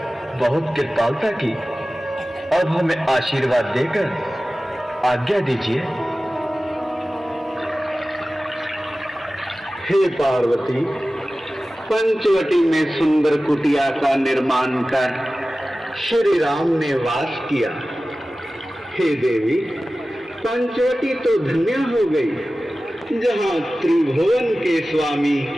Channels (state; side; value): normal; both; correlation 0.96